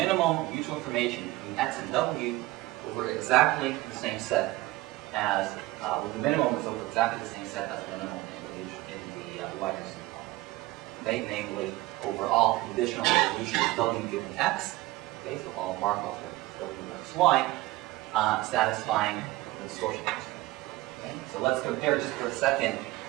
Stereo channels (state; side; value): quieter; left; 18.9 dB